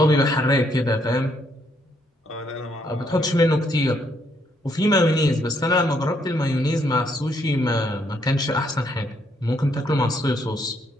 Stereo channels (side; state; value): both; normal; correlation 0.72